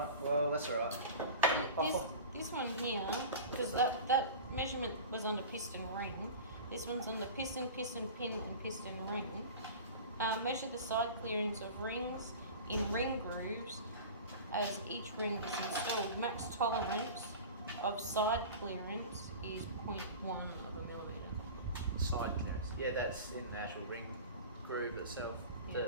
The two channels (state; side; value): inverted; both; correlation -0.35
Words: well, that's alright. This one here, because that measurement was under piston ring. This one's under piston, piston pin, and piston ring. Measure the side clearance of rings in ring grooves as each ring is installed. Max tolerance of side clearance is 0.1 of a millimetre. Side clearance. Yeah, that's in the actual ring groove itself. Yeah.